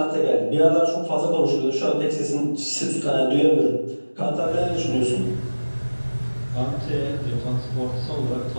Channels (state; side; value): inverted; both; correlation -1.00